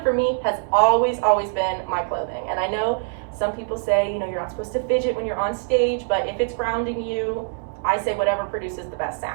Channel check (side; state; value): left; silent; digital silence